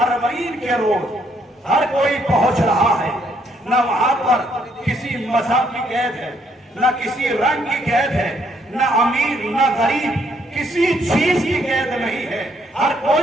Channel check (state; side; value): normal; both; correlation 0.70